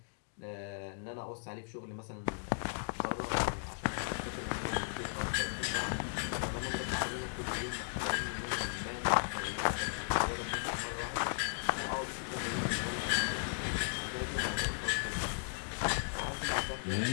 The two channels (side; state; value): right; silent; digital silence